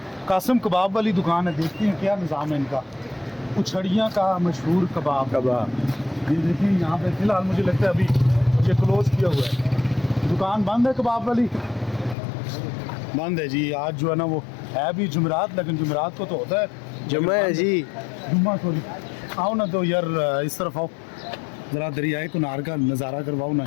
कासिम कबाब वाली दुकान है, देखते हैं क्या निज़ाम है इनका। उछड़ियाँ का मशहूर कबाब ये देखिए यहाँ पे फ़िलहाल मुझे लगता है अभी ये क्लोज़ किया हुआ है, दुकान बंद है कबाब वाली, बंद है जी। आज जो है ना वो है भी जुमेरात, लेकिन जुमेरात को तो होता है जुम्मा है जी, जुम्मा सॉरी। आओ ना तो यार इस तरफ आओ, ज़रा दरियाए कुनार का नज़ारा करवाओ ना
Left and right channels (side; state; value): right; drops out; at 12.2 s